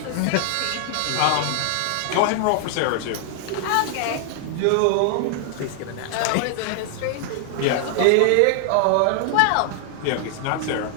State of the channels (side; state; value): both; different; correlation 0.00